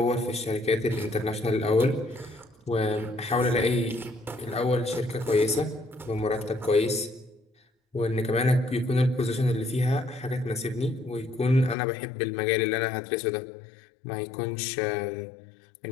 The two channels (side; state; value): right; drops out; at 11.8 s